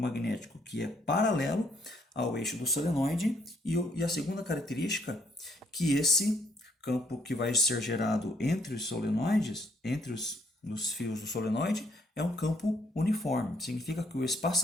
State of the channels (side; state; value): both; normal; correlation 0.68